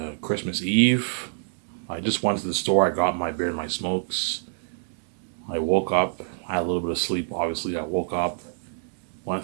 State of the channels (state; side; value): silent; left; digital silence